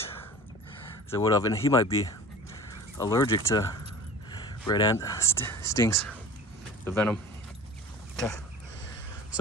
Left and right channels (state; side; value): normal; both; correlation 0.40